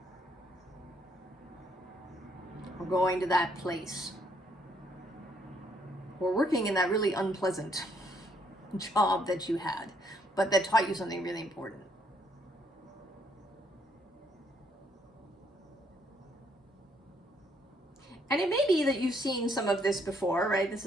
Or going to that place. Or working in that really unpleasant job that you had, but that taught you something really important. And it may be that you've seen some of this before, right? This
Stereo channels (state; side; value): normal; both; correlation 0.70